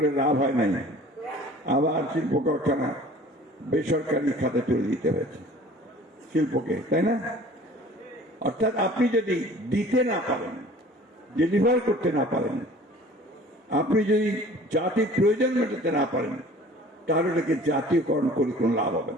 লাভ হয় নাই, আবার শিল্প কারখানা বেসরকারি খাতে তুলে দিতে হয়েছে শিল্পকে, তাই না? অর্থাৎ আপনি যদি দিতে না পারেন, ডেলিভার করতে না পারেন, আপনি যদি জাতির প্রয়োজন মেটাতে না পারেন, তাহলে এটাকে জাতীয়করণ করে কোনো লাভ হবে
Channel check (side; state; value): both; normal; correlation 0.48